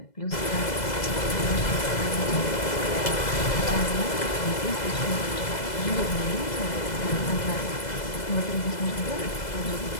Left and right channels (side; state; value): right; late; 2.0 ms